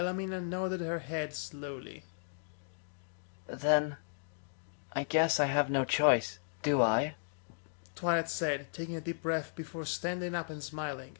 nodded her head slowly. Then, I guess I have no choice, do I? Twilight said, taking a deep breath before standing up and smiling.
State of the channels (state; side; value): silent; right; digital silence